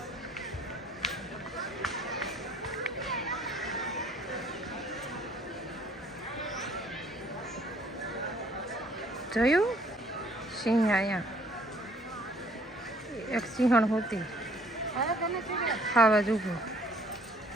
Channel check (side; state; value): both; normal; correlation 0.60